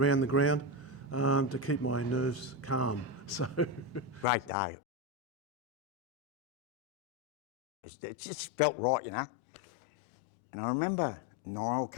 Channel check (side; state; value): both; normal; correlation 0.13